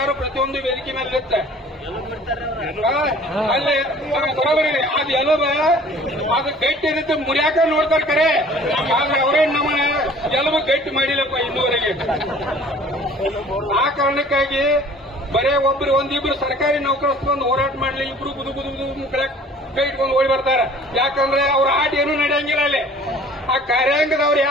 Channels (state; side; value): normal; both; correlation 0.50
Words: ಪ್ರತಿಯೊಂದು ವೇದಿಕೆ ಮೇಲೆ ಇರುತ್ತೆ. ಅಲ್ಲಿ ಬರೋಬರಿ ಅದು ಎಲುಬ ಅದು ಗಟ್ಟಿ ಇರುತ್ತೆ, ಮುರಿಯಾಕ ನೋಡ್ತಾರೆ ಕರೆ, ಆದ್ರೆ ಅವರೇ ನಮ್ಮ ಎಲುಬು ಗಟ್ಟಿ ಮಾಡಿಲ್ಲಪ್ಪ ಇನ್ನೂವರೆಗೆ. ಆ ಕಾರಣಕ್ಕಾಗಿ ಬರೇ ಒಂದಿಬ್ರು ಸರ್ಕಾರಿ ನೌಕರಸ್ಕೊಂಡು ಹೋರಾಟ ಮಾಡ್ಲಿ, ಇಬ್ರು ಬುದು ಕೈ ಇಟ್ಕೊಂಡು ಓಡಿ ಬರ್ತಾರೆ. ಯಾಕಂದ್ರೆ ಅವ್ರ ಆಟ ಏನೂ ನಡೆಯಂಗಿಲ್ಲ ಅಲ್ಲಿ. ಆ ಕಾರ್ಯಾಂಗದವ್ರು